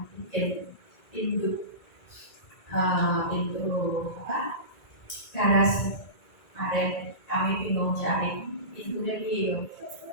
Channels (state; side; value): late; right; 1.9 ms